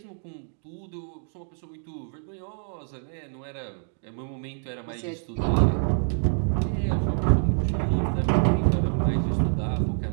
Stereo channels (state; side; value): silent; left; 60 dB below the other